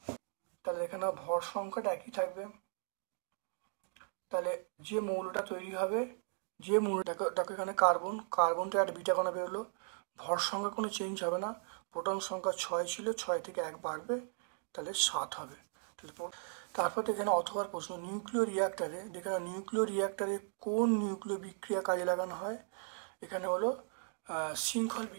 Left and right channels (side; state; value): left; silent; 53 dB below the other